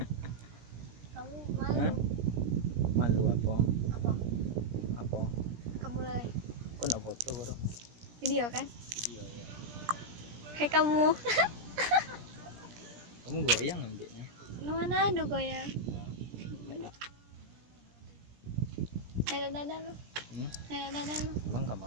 Kamu malu? Hah? Malu apa? Apa? Apa? Kamu mulai Aku nak foto bro. video kan? Iya ya. Hai kamu. Kamu goyang ambilnya. Mana ada goyang? Nada lu. Nada lu. Emang kamu?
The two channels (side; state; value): left; late; 17 ms